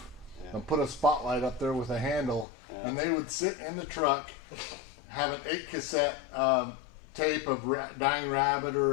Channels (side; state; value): right; drops out; at 2.5 s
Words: and put a spotlight up there with a handle, and they would sit in the truck, have an 8 cassette tape of dying rabbit